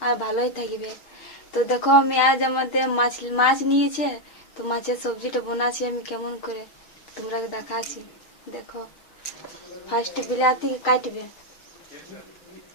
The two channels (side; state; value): right; late; 6.4 ms